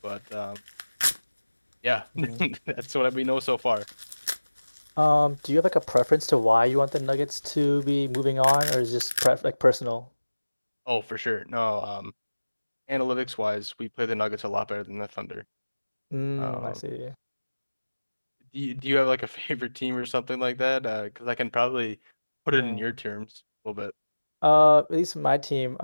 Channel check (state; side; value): inverted; both; correlation -1.00